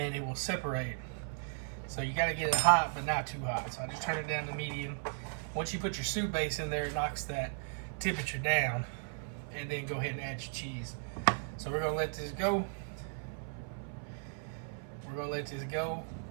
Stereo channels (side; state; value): left; silent; 54 dB below the other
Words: it will separate. So you gotta get it hot but not too hot. So I just turned it down to medium. Once you put your soup base in there, it knocks that temperature down, and then go ahead and add your cheese. So we're gonna let this go. We're gonna let this go